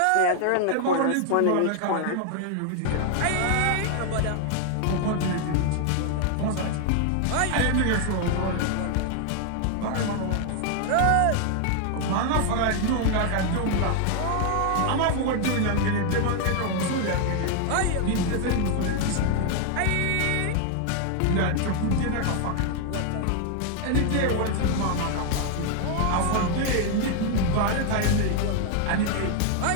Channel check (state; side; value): different; both; correlation 0.00